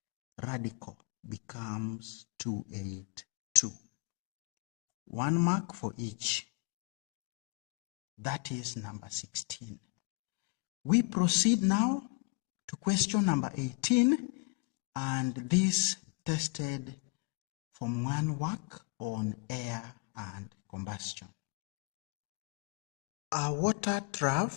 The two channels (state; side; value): quieter; right; 29.7 dB